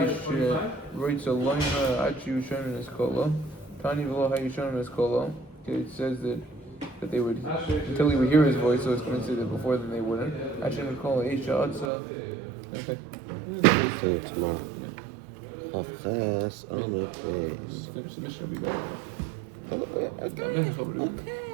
writes a line Achi Sherman is called. Tani v'lo hayu Sherman is called. It says that they would until he would hear his voice, so it's going to say that before then they wouldn't. Achi would call Aisha Atza. Okay. See you tomorrow. Finish the mission will be better. I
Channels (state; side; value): drops out; left; at 11.9 s